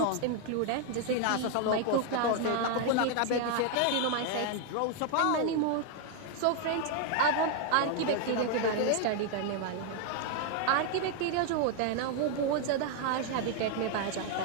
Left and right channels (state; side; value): different; both; correlation 0.00